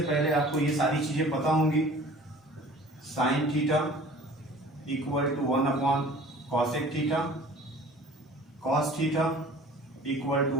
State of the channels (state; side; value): normal; both; correlation 0.46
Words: पहले आपको ये सारी चीजें पता होंगी. Sine theta equal to 1 cosec theta, cos theta equal to